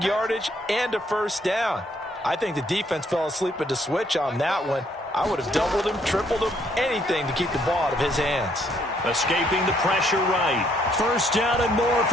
yardage and a 1st down. I think the defense fell asleep at the switch on that one. I would have doubled him, tripled him, anything to keep the ball out of his hands. Escaping the pressure right. 1st down and more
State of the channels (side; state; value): both; normal; correlation 0.69